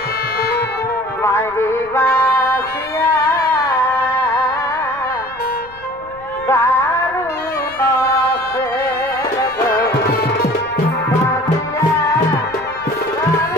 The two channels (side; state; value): left; noise; rumble, 24 dB below the sound